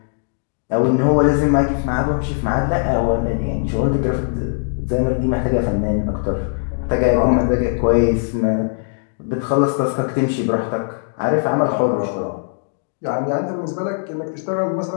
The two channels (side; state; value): right; silent; digital silence